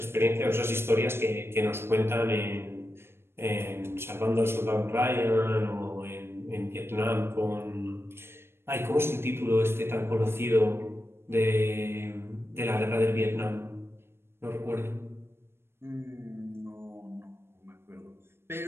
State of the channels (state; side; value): late; left; 0.12 ms